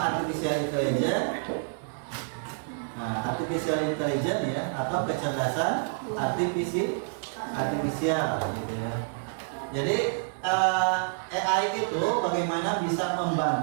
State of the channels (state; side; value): silent; left; digital silence